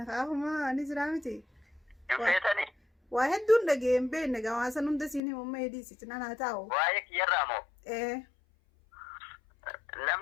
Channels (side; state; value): right; drops out; at 5.2 s